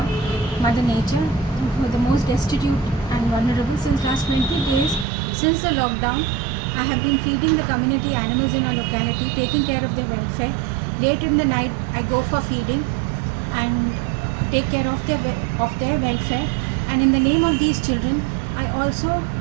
Mother Nature, who are the most destitute and vulnerable. Since last 20 days, since the lockdown, I have been feeding the community animals in our locality, taking care of their welfare. Late in the night, I go for feeding and take care of their welfare. And in the name of these children, I also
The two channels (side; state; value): left; drops out; at 5.1 s